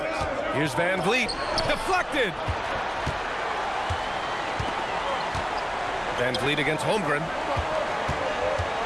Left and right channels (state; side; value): identical; both; correlation 1.00